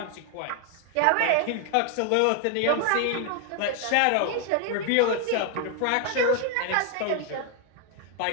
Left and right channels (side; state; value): both; different; correlation 0.00